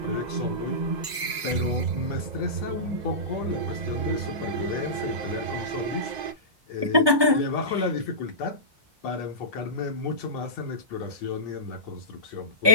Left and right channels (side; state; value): left; late; 1.2 ms